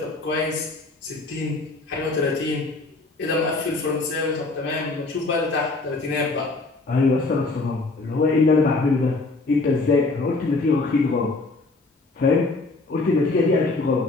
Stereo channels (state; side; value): quieter; right; 3.4 dB